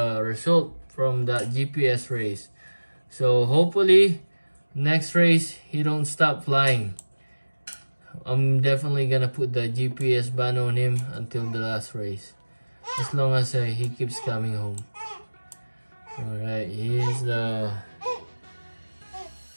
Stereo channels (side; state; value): both; inverted; correlation -1.00